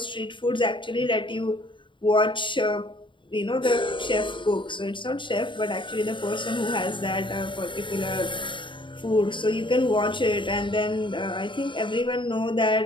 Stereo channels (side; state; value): right; late; 0.24 ms